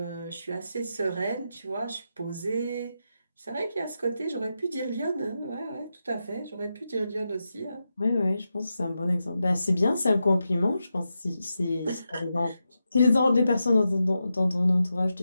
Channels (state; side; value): inverted; both; correlation -0.88